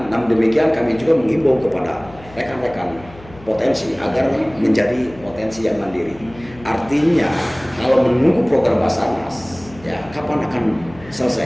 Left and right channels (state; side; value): noise; left; hum, 21 dB below the sound